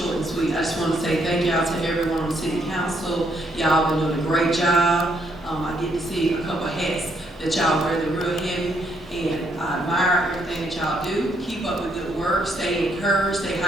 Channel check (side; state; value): both; normal; correlation 0.73